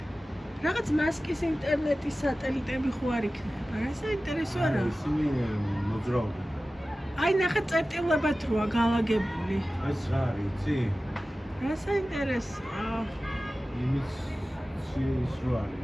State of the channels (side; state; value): both; normal; correlation 0.96